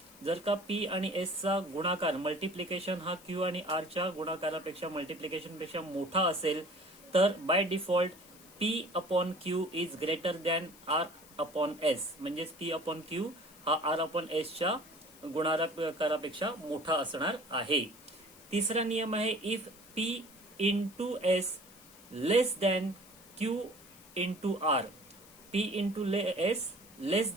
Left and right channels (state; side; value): noise; left; hiss, 22 dB below the sound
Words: जर का P आणि S चा गुणाकार मल्टिप्लिकेशन हा Q आणि R च्या गुणाकारापेक्षा मल्टिप्लिकेशन पेक्षा मोठा असेल तर by default P upon Q is greater than R upon S. म्हणजेच P अपॉन क्यू हा R अपॉन एस च्या गुणाकारापेक्षा मोठा असणार आहे. तिसरा नियम आहे, if P into S less than Q into R. P into S less